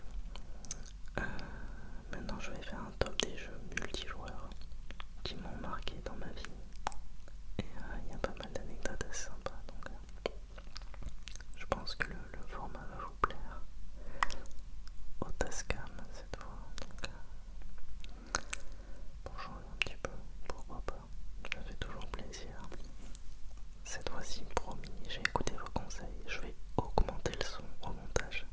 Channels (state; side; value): identical; both; correlation 1.00